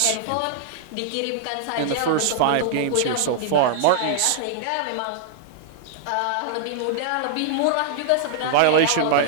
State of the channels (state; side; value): different; both; correlation -0.01